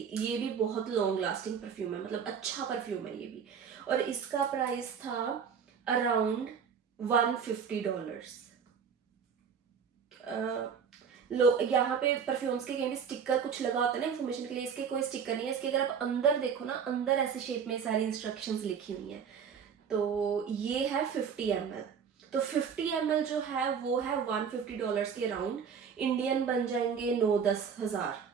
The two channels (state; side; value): quieter; left; 6.8 dB